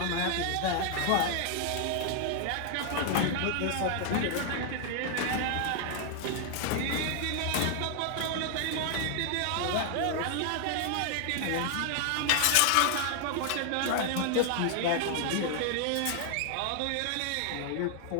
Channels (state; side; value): different; both; correlation 0.00